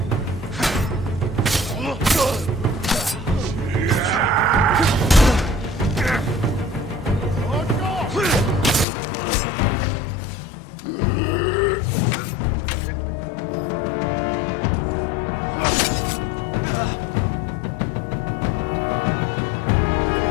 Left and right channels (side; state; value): right; drops out; at 8.8 s